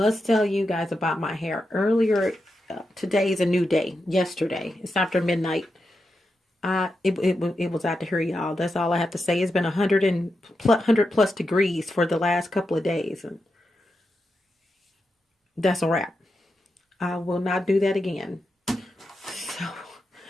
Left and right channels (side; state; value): both; normal; correlation 0.88